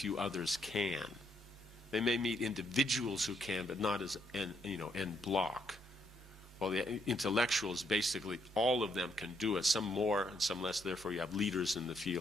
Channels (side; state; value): both; normal; correlation 0.74